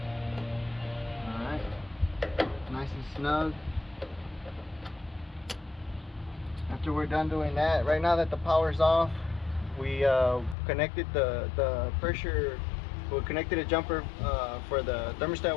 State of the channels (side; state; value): right; drops out; at 10.6 s